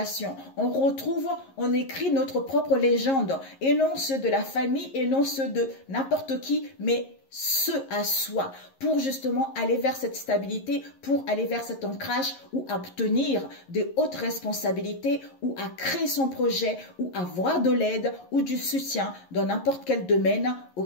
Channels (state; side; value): late; right; 11 ms